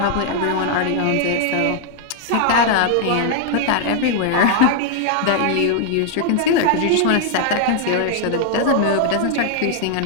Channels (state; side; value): different; both; correlation 0.00